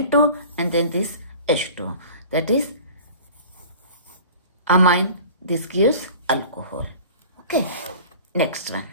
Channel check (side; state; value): both; inverted; correlation -0.42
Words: and then this H2. That is amine. This gives alcohol. Okay, next one.